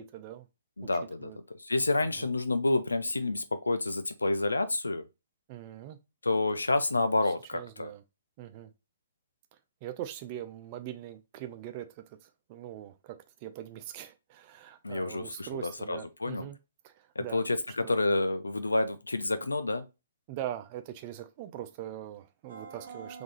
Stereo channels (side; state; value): both; inverted; correlation -0.88